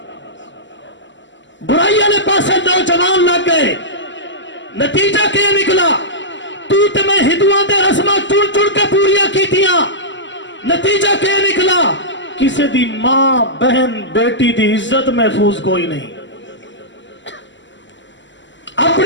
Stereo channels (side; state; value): right; late; 0.54 ms